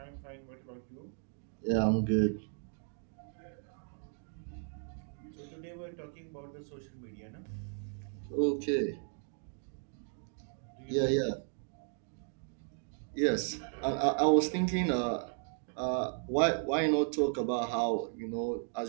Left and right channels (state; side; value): silent; left; 54 dB below the other